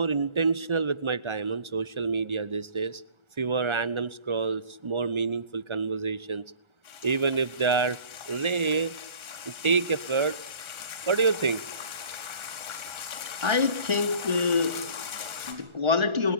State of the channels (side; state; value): left; late; 1.4 ms